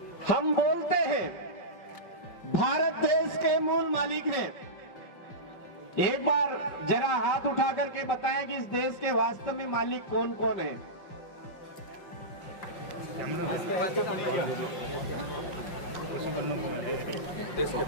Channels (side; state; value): right; late; 5.3 ms